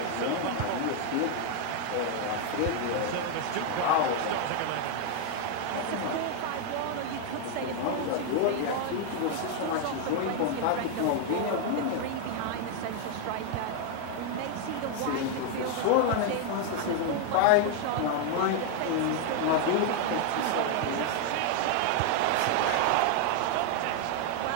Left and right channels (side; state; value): both; different; correlation 0.00